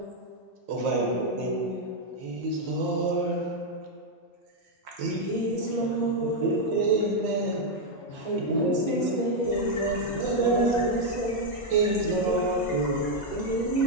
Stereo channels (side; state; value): both; normal; correlation 0.01